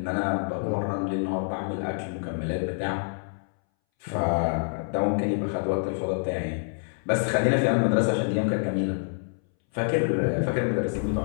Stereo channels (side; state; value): right; silent; 60 dB below the other